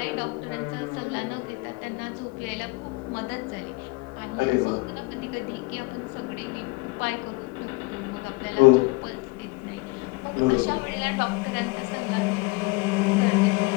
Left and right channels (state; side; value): quieter; right; 25.4 dB